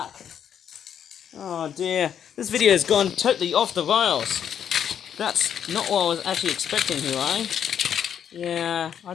Oh dear, this video has gone totally off the rails. That's not what I was actually expecting here, eh? Yeah,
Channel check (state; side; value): quieter; right; 8.8 dB